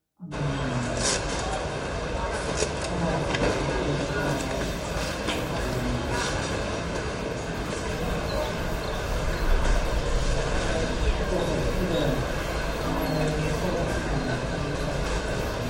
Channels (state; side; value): identical; both; correlation 1.00